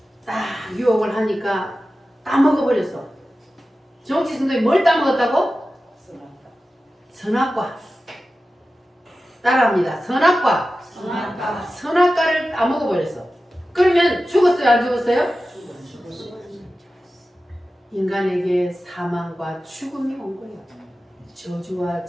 딱 유혹을 하니까 따먹어버렸어. 정치 선생님이 뭘 따먹었다고? 선악과. 따라합니다. 선악과. 선악과를 따먹어버렸어. 그러면 죽었어요, 안 죽었어요? 인간에게 사망과 죽음이 온 거예요. 저주와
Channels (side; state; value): both; normal; correlation 0.94